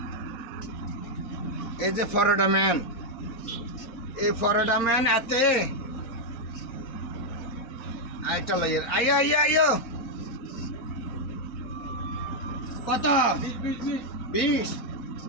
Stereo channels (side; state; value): right; late; 4.2 ms